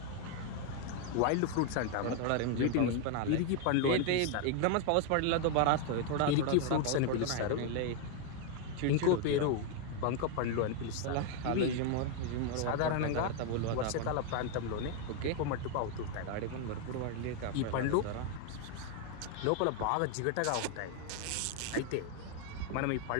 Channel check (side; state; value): both; different; correlation 0.01